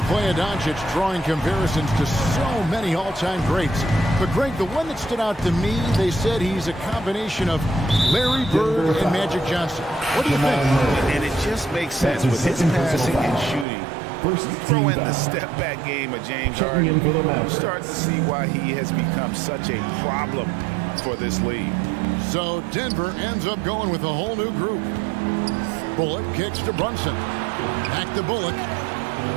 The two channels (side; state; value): left; drops out; at 13.7 s